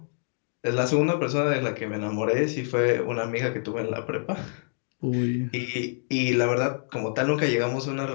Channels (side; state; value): right; silent; digital silence